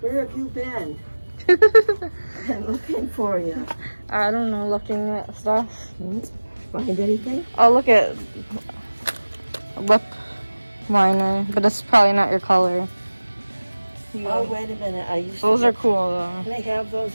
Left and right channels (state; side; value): inverted; both; correlation -1.00